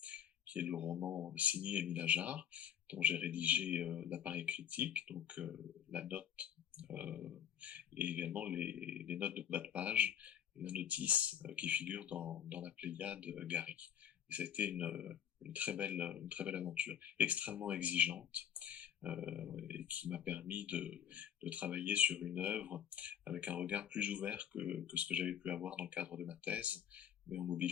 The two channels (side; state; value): right; quieter; 9.2 dB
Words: qui est le roman signé Émile Ajar, dont j'ai rédigé l'appareil critique, donc la note, et également les notes de bas de page et la notice qui figure dans la Pléiade Gary. Et ça a été une très belle aventure, extrêmement exigeante, et qui m'a permis de travailler sur une œuvre avec un regard plus ouvert que ce que j'avais pu avoir dans le cadre de ma thèse, mais en